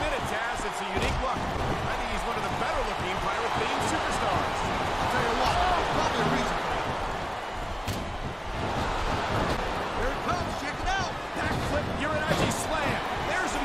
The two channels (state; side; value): identical; both; correlation 1.00